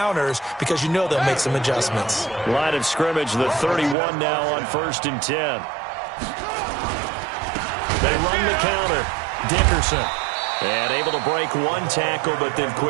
because you know they'll make some adjustments. Line of scrimmage, the 31 now on 1st and 10. They run the counter. Dickerson. And able to break one tackle, but then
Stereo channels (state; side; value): drops out; left; at 4.0 s